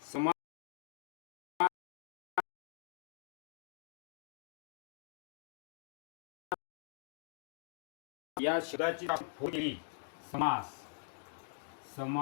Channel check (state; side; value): silent; right; digital silence